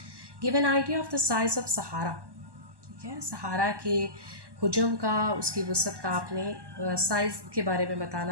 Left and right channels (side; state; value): left; late; 1.1 ms